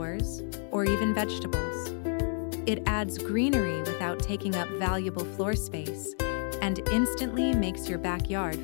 or even vegetables. It adds greenery without taking up valuable floor space and instantly makes your backyard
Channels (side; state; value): right; silent; 58 dB below the other